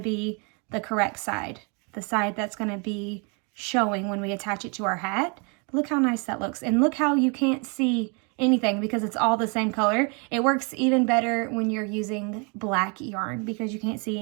be the correct side, the side that's going to be showing when we attach it to our hat. But look how nice that looks, and look how you can't see anything because it's all the same color. It works even better when you're using black yarn because you can't see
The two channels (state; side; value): quieter; left; 34.4 dB